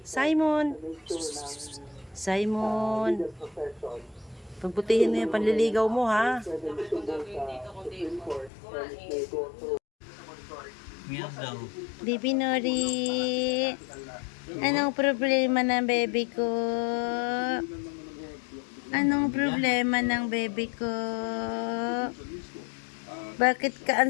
Simon! Simon! Pagputihin mo yung panliligaw mo, ha? Baby Nori! Anong problema ng baby ko? Anong problema ng baby ko? Bakit ka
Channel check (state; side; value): drops out; right; at 8.5 s